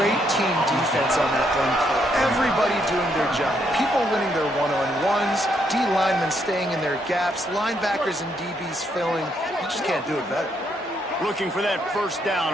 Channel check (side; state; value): both; normal; correlation 0.75